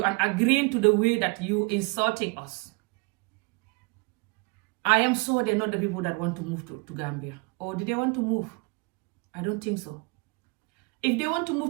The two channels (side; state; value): left; quieter; 30.3 dB